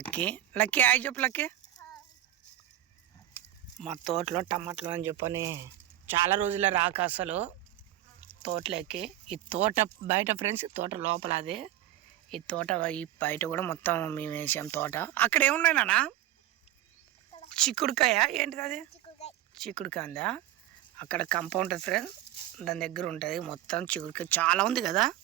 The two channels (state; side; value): quieter; left; 13.6 dB